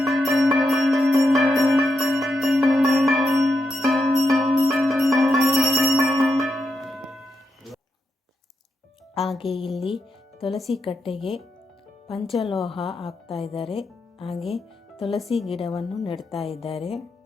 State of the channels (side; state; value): both; normal; correlation 0.84